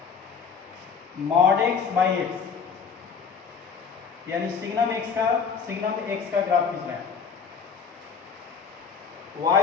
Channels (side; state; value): right; quieter; 6.0 dB